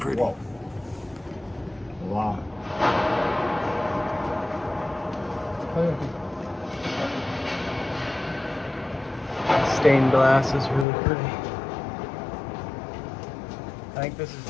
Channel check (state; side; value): drops out; right; at 10.9 s